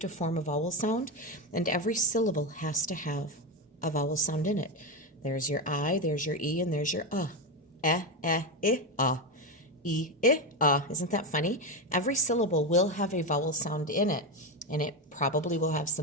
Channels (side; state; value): both; normal; correlation 0.12